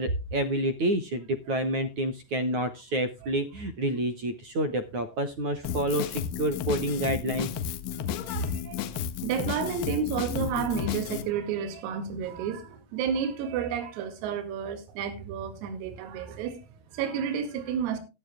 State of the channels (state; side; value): late; left; 9.3 ms